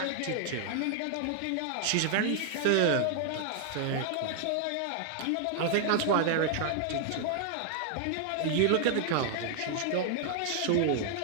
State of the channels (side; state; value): both; different; correlation 0.00